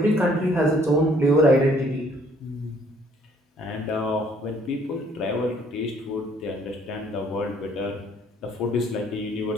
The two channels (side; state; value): both; normal; correlation 0.62